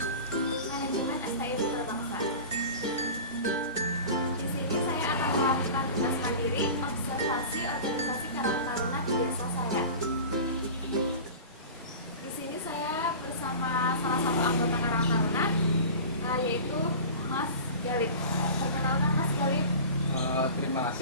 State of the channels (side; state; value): both; inverted; correlation -0.35